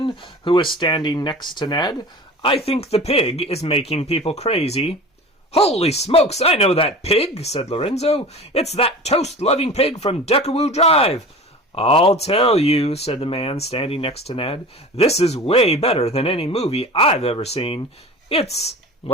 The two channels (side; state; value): both; normal; correlation 0.37